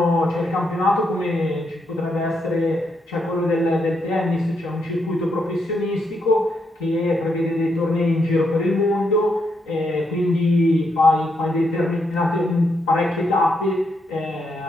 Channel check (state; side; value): normal; both; correlation 0.79